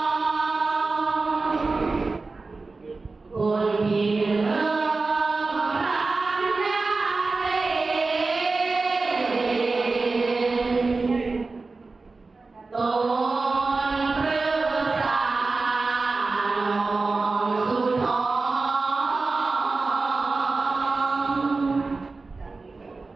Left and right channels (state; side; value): quieter; left; 3.8 dB